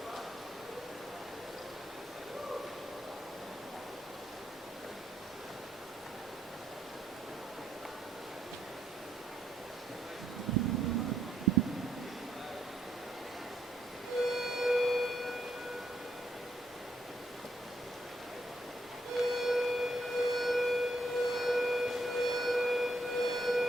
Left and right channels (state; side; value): normal; both; correlation 0.75